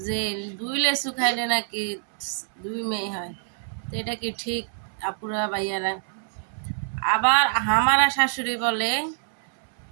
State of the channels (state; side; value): silent; left; 61 dB below the other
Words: যে দুই লেচু খাইলে নাকি দুই মেয়ে হয়। তো এটা কি ঠিক আপুরা ভাইয়ারা? আবার হামারা শাশুড়ি বলে